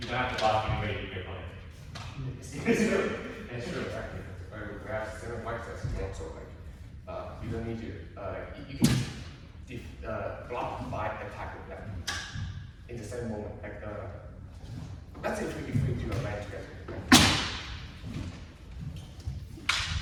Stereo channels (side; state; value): both; identical; correlation 1.00